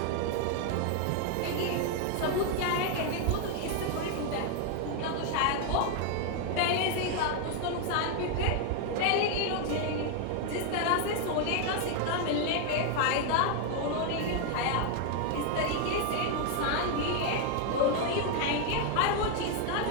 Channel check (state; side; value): different; both; correlation 0.01